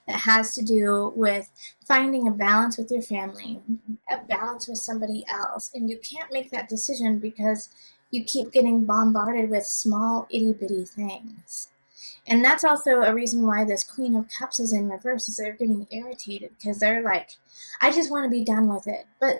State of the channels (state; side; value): inverted; both; correlation -1.00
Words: that has to do with finding a balance with your family, a balance with somebody else. And you can't make that decision because you keep getting bombarded with small itty-bitty things. And that's also a reason why this Queen of Cups is in reverse, is they're getting irritated because they're like, I just want to be done with it.